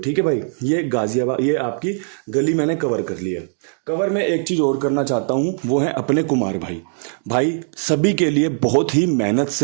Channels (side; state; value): left; silent; digital silence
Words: है भाई, ये गाजियाबाद, ये आपकी गली मैंने कवर कर ली है। कवर में एक चीज़ और करना चाहता हूँ, वो है अपने कुमार भाई। भाई सभी के लिए बहुत ही मेहनत